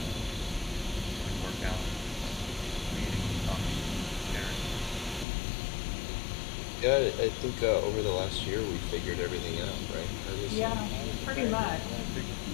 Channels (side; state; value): right; drops out; at 5.2 s